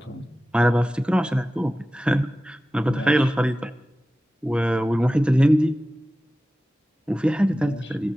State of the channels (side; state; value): both; normal; correlation 0.96